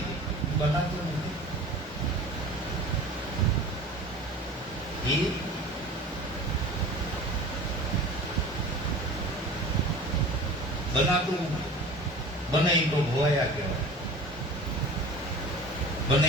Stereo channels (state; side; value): normal; both; correlation 0.39